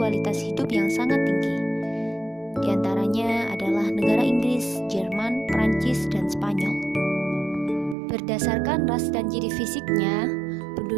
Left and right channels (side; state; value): left; drops out; at 8.0 s